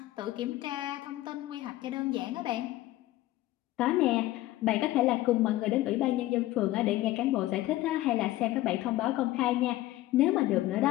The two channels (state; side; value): quieter; right; 16.2 dB